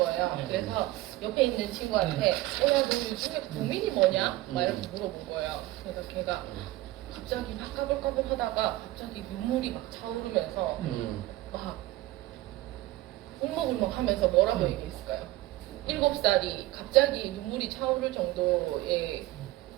네. 그래서 옆에 있는 친구한테 야 너 요즘에 고민이 뭐냐? 막 이렇게 물어본 거예요. 그래서 걔가 갑자기 막 까불까불 하다가 갑자기 눈물이 막 차오르면서 막 울먹울먹 하면서 뭐라고 얘기했을까요? 7살이 갑자기 눈물이 차오를 정도의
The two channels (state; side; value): quieter; left; 17.4 dB